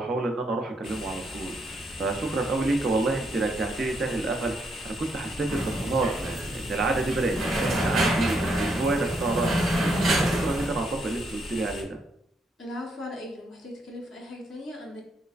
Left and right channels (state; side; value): normal; both; correlation 0.76